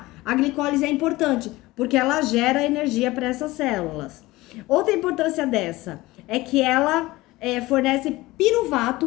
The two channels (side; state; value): right; quieter; 19.5 dB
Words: a glicólise é importante, porque ela gera energia para essas células. Outra importância dessa é que ela fornece